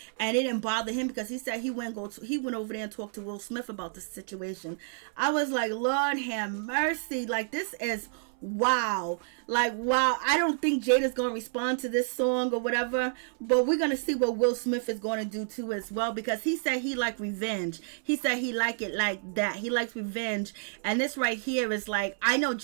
and it didn't bother him because he said he went over there and talked to Will Smith about the situation. I was like, Lord have mercy. Like, this is wow. Like, wow. I don't think Jada's going to respond to this song or whatever, but we're going to see what Will Smith is going to do too as well, because he said he liked revenge. He said he liked it like that. He likes revenge. And this right here is like, I know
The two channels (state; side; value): silent; left; 58 dB below the other